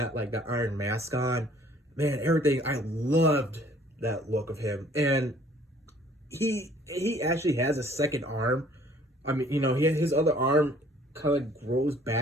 the iron mask on. Man, everything, I loved that look of him. And he actually has a second arm. I mean, you know, his other arm kind of grows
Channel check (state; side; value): normal; both; correlation 0.57